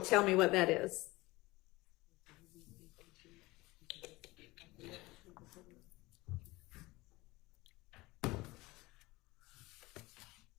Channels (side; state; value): right; quieter; 21.0 dB